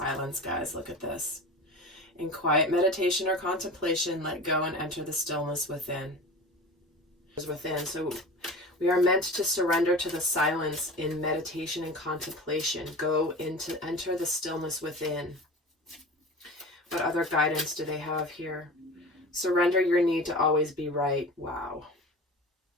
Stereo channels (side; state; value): both; normal; correlation 0.34